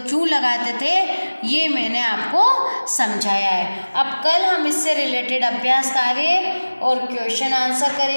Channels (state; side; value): inverted; both; correlation -1.00